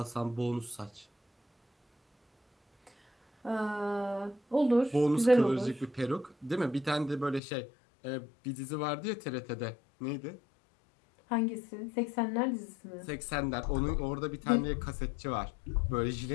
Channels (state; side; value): drops out; right; at 7.4 s